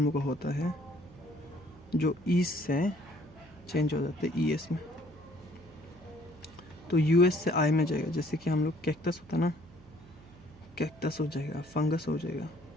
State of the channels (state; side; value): noise; right; hum, 24 dB below the sound